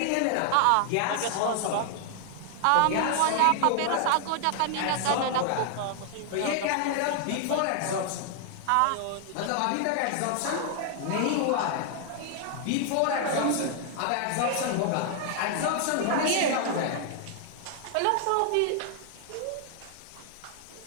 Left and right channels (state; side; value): different; both; correlation 0.00